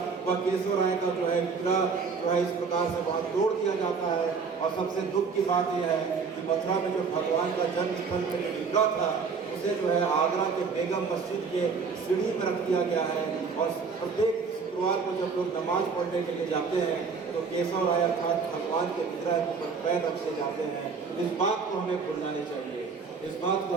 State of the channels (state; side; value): quieter; left; 5.3 dB